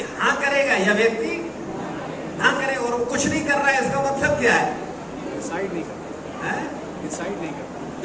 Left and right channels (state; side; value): identical; both; correlation 1.00